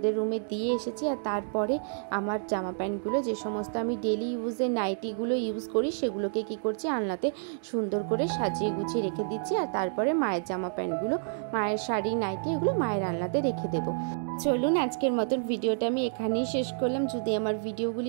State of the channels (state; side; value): silent; left; digital silence